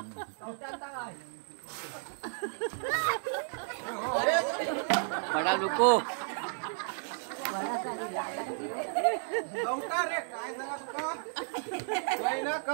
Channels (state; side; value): silent; left; digital silence